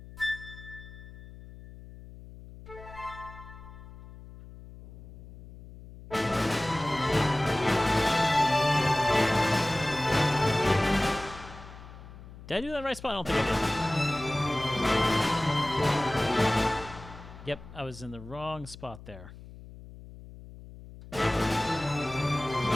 Did I do that in the right spot? I don't think I did. Yep, I was in the wrong spot there.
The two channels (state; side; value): noise; left; hum, 17 dB below the sound